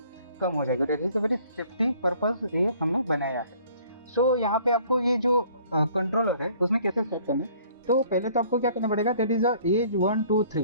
कम हो जाएगी। That is a very safety purpose ये हमने बनाया है। सो यहाँ पे आपको ये जो कंट्रोलर है उसमें कैसे सेट करना है, तो पहले तो आपको क्या करना पड़ेगा, दैट इज एज 1 2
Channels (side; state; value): both; inverted; correlation -0.57